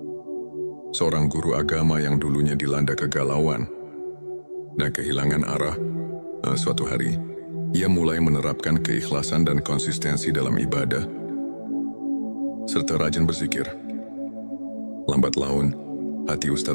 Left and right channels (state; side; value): inverted; both; correlation -1.00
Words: seorang guru agama yang dulunya dilanda kegalauan dan kehilangan arah. Suatu hari, ia mulai menerapkan keikhlasan dan konsistensi dalam ibadah, serta rajin berzikir. Lambat laun, hati